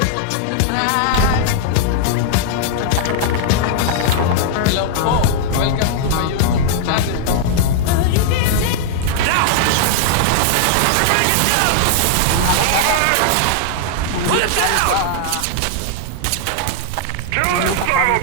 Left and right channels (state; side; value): different; both; correlation -0.01